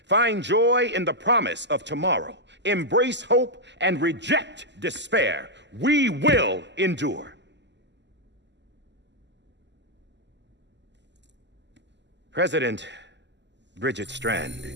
find joy in the promise of tomorrow, embrace hope, and reject despair, we will endure. President Bridget Strand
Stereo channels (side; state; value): left; late; 0.51 ms